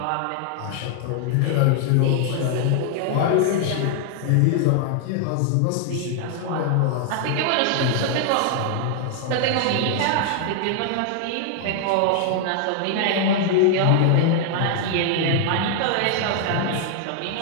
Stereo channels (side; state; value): both; different; correlation 0.00